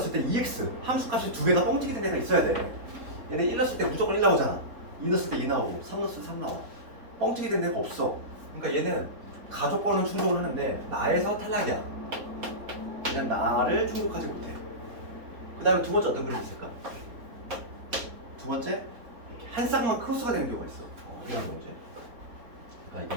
때 2x 함수값이 두 개가 뻥튀기 된 애가 있어야 돼. 얘네 1 넣었을 때 무조건 1 나오잖아. 2 넣었을 때 2 나오고 3 넣었을 때 3 나와. 뻥튀기 된 애가 없어. 그러니까 얘는 가족권은 충족을 하는데 나에서 탈락이야. 그냥 나를 충족하지 못해. 그 다음에 두 번째 어떤 그림이 있을까? 두 번째 이렇게 한 쌍만 크로스가 되는 경우가 있어. 이런 경우지. 그러니까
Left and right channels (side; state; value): left; late; 4.0 ms